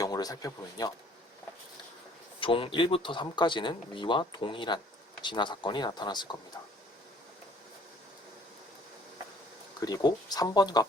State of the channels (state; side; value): normal; both; correlation 0.57